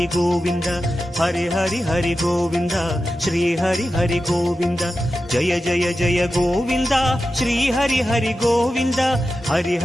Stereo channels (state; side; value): normal; both; correlation 0.92